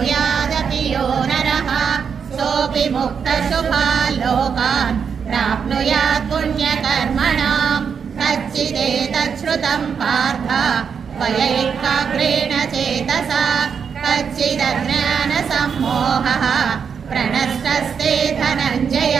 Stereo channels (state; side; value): quieter; left; 6.7 dB